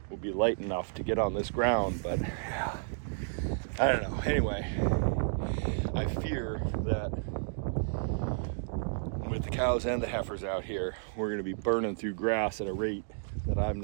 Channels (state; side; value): silent; left; digital silence